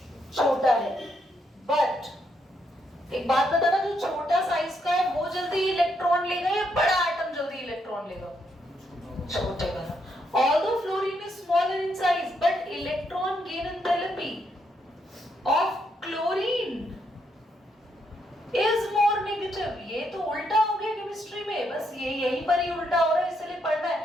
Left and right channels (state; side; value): normal; both; correlation 0.77